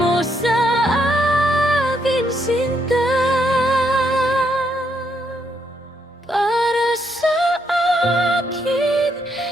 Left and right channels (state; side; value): normal; both; correlation 0.75